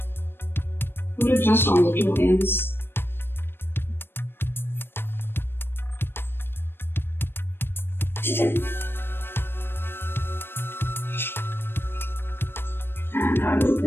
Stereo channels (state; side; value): late; right; 0.10 ms